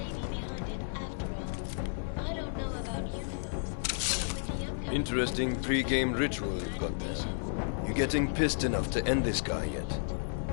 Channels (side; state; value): right; silent; 56 dB below the other